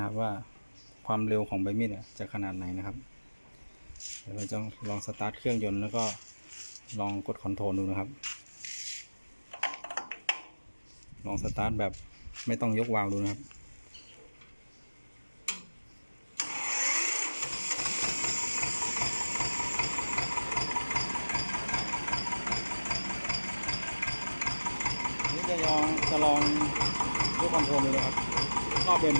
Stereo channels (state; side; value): inverted; both; correlation -1.00